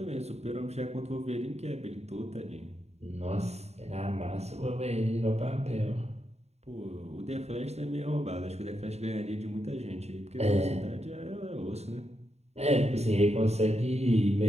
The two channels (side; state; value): left; late; 0.31 ms